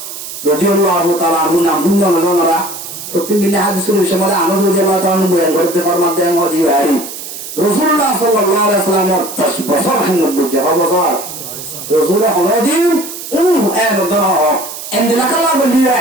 رضي الله تعالى عنه নাম আমরা প্রতিদিন হাদিসের বিষয়ে আনস রাদিয়াল্লাহু তাআলা আনহু বয়ান করতে ফরমাতে हैं मोदी भाई রাসূলুল্লাহ সাল্লাল্লাহু আলাইহি ওয়াসাল্লাম 10 বছর খেদমত করছে বছর রাসূল হদিন এন দনা এন্দিলা কালা বলিয়া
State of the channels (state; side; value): noise; right; hiss, 10 dB below the sound